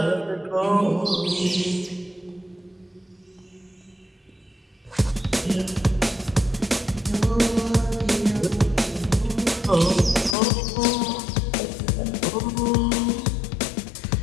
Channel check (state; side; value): drops out; right; at 10.4 s